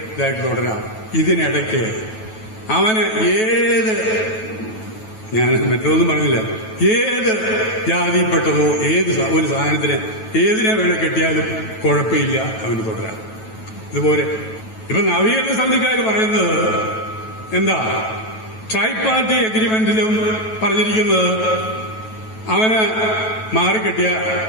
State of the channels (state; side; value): late; right; 9.2 ms